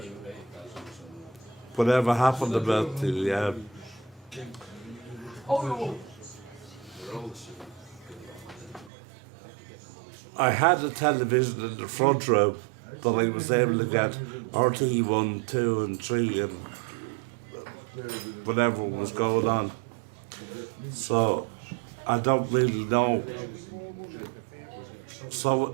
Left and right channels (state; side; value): drops out; left; at 8.9 s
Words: the, I had a television in the front room that I was able to get RT 1, 2 and 3 and whatever was going on. So I don't really know. So